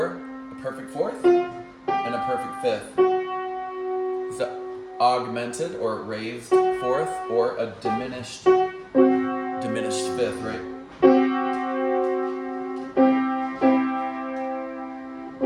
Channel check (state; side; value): identical; both; correlation 1.00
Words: a perfect 4th, and a perfect 5th. It's an augmented or raised 4th or a diminished 5th, right?